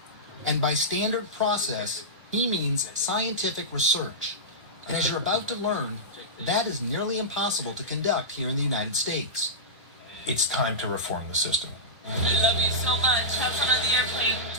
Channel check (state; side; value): normal; both; correlation -0.14